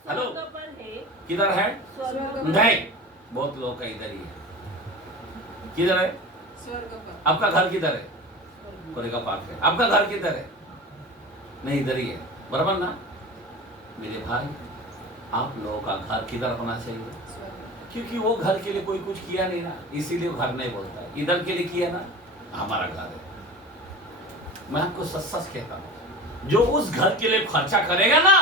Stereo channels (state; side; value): normal; both; correlation 0.33